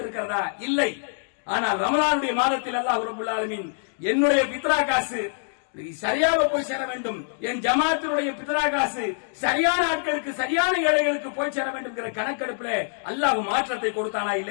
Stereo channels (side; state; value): right; silent; digital silence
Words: இல்லை. ஆனால் ரமலானுடைய மாதத்தில் அல்லாஹ் ரப்பல் ஆலமீன் என்னுடைய பித்ரா காசு சரியாக போய் சேர வேண்டும், என் ஜமாத்தினுடைய பித்ரா காசு சரியான ஆட்களுக்கு, சரியான ஏழைகளுக்கு போய் சேர வேண்டும் என்கிற கணக்கெடுப்பில் அல்லாஹ் மாற்றத்தை கொடுத்தானா